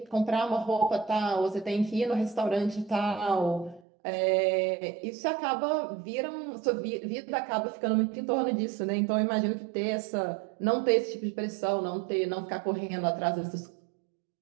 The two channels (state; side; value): drops out; left; at 3.8 s